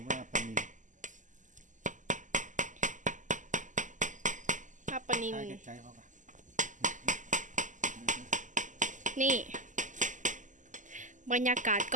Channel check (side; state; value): left; late; 0.37 ms